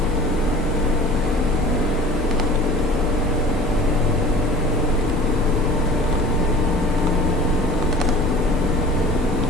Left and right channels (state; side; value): normal; both; correlation 0.43